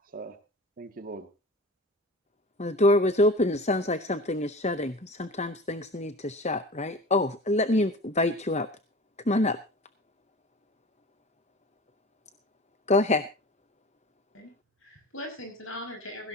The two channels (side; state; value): both; normal; correlation 0.38